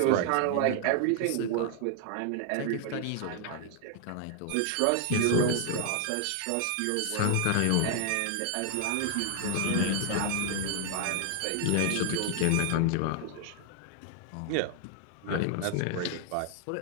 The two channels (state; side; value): different; both; correlation 0.00